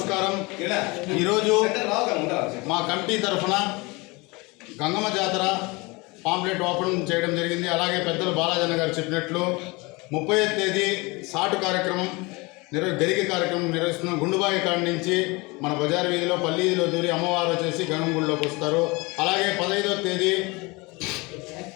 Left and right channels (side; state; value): right; quieter; 25.4 dB